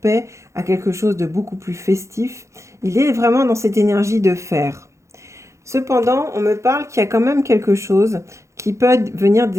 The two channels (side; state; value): left; late; 0.14 ms